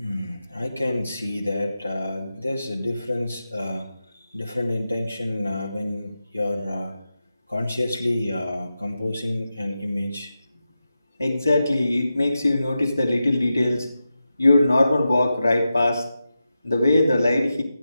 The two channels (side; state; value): both; inverted; correlation -0.90